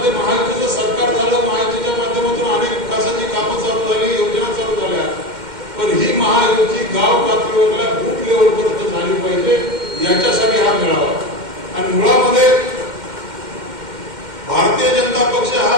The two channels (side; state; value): left; late; 2.1 ms